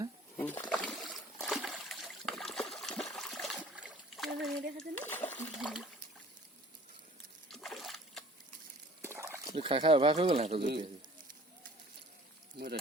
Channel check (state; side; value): normal; both; correlation 0.50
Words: খাই খাই অভ্যাস হৈ গ'ল সিহঁতৰ জলকীয়া মই